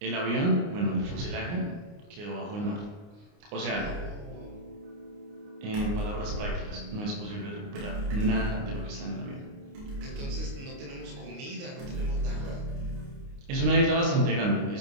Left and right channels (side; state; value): left; late; 29 ms